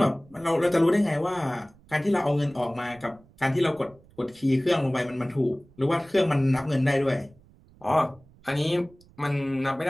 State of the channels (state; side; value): noise; right; rumble, 27 dB below the sound